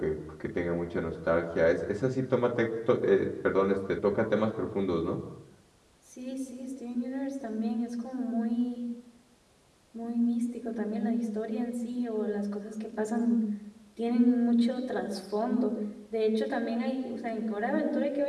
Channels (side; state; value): both; identical; correlation 1.00